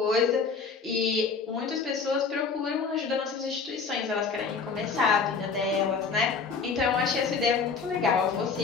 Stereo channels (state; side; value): quieter; right; 5.2 dB